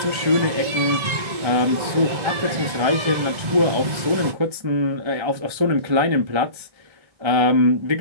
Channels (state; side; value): late; left; 1.3 ms